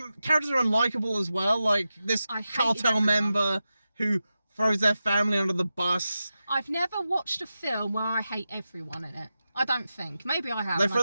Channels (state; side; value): inverted; both; correlation -0.92